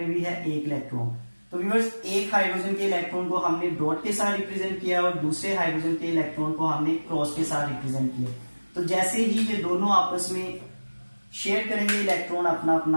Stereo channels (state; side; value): inverted; both; correlation -1.00